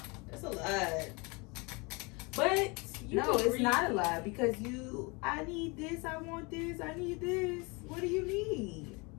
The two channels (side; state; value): right; quieter; 28.1 dB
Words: That's a lot. But you No, can it's read- not a lie because I need this, I want this, I need this. What do you need?